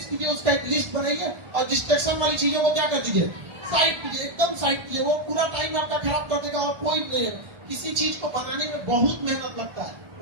कीजिए उसका एक लिस्ट बनाइए, और डिस्ट्रैक्शन वाली चीजों को क्या कर दीजिए, साइड कीजिए, एकदम साइड कीजिए। वो पूरा टाइम आपका खराब कर देगा, और कोई नहीं। किसी चीज को बनाने में बहुत मेहनत लगता है,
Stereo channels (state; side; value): late; left; 1.3 ms